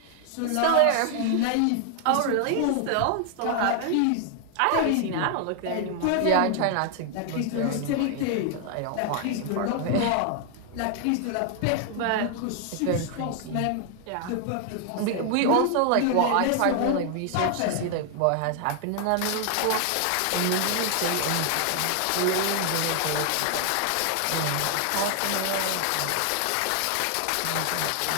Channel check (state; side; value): different; both; correlation 0.00